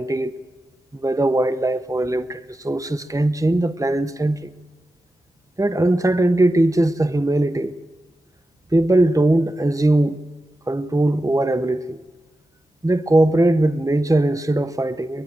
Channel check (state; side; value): normal; both; correlation 0.91